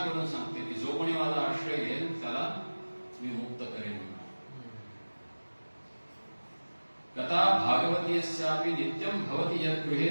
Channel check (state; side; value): inverted; both; correlation -1.00